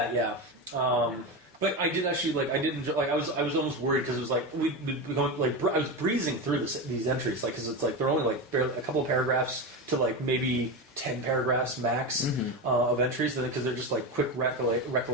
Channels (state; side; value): normal; both; correlation 0.18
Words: Yeah. But I did actually like. I did enjoy. Like I was almost worried because it was like we'd be going like I was breezing through these entries, like because it's like they're only like barely a couple of paragraphs to like maybe 10 paragraphs max of entries, because they're just like quick